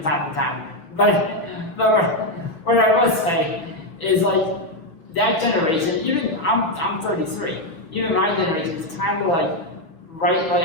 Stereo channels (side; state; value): right; late; 6.2 ms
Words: to time. But what I will say is, like, that generation, even I'm 33. Even my generation is kind of like right like